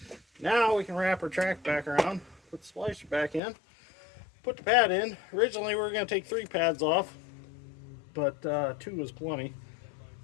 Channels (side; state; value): right; drops out; at 3.4 s